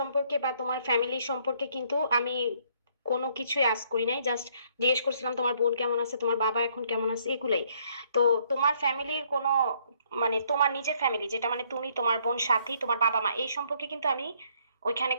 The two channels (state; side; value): inverted; both; correlation -0.67